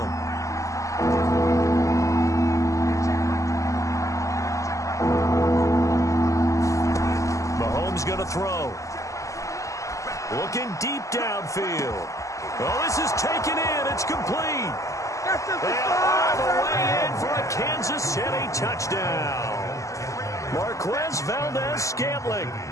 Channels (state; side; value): late; right; 0.16 ms